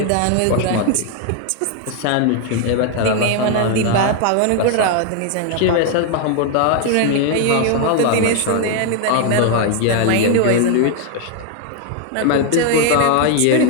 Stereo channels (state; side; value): different; both; correlation 0.00